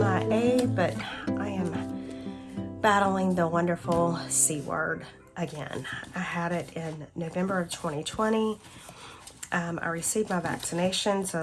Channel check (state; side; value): identical; both; correlation 1.00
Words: but I am battling the wonderful C word again. I had it in November of 2020. I received my vaccinations